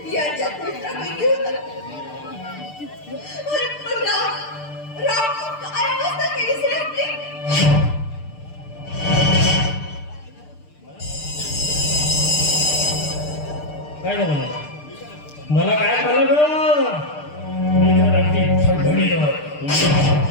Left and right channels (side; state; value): right; late; 6.7 ms